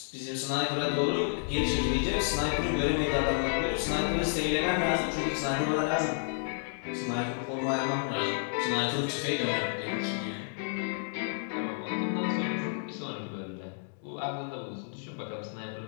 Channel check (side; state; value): right; silent; digital silence